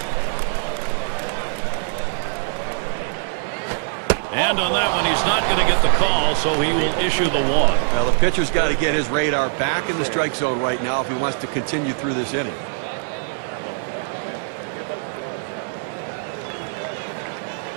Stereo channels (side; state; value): left; silent; digital silence